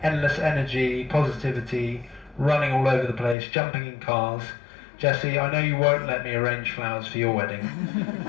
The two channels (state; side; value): drops out; right; at 3.4 s